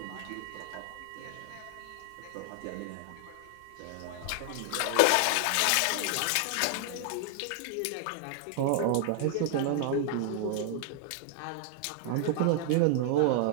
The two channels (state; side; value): different; both; correlation 0.00